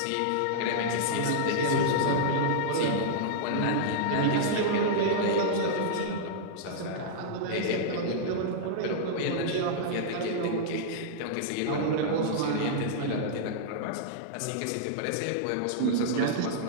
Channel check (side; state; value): both; different; correlation -0.02